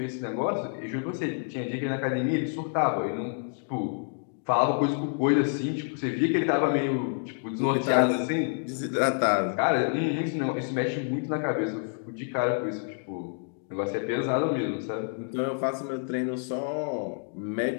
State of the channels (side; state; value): right; silent; digital silence